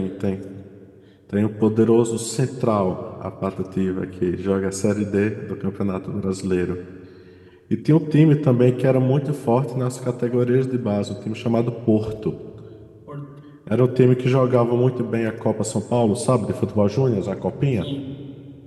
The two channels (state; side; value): identical; both; correlation 1.00